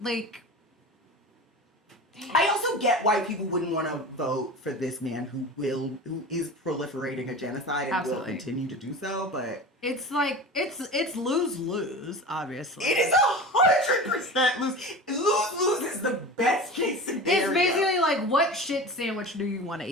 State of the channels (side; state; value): both; normal; correlation 0.32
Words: like. I also get why people wouldn't want to vote for this man who is proliferating a genocide and will continue to do so, but it's like it's lose-lose, obviously. It is 100% lose. Lose-lose is the best case scenario. It's basically like, what shit sandwich do you want to